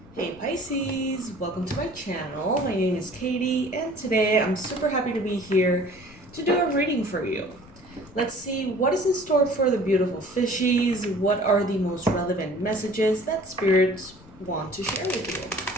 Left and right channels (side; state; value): left; noise; rumble, 22 dB below the sound